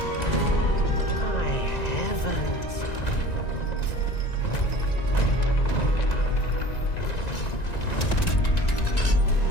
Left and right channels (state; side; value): late; right; 1.9 ms